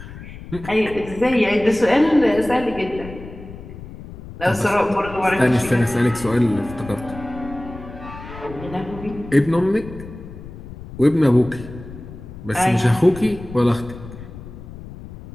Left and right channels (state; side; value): noise; left; rumble, 14 dB below the sound